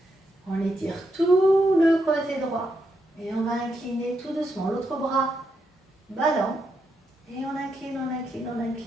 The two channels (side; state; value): both; normal; correlation 0.82